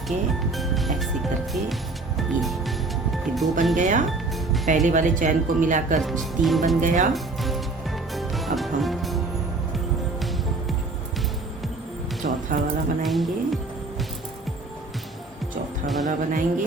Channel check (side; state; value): left; quieter; 3.4 dB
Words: ये फिर 2 बन गया। पहले वाले चैन को मिलाकर 3 बन गया। अब हम चौथा वाला बनाएंगे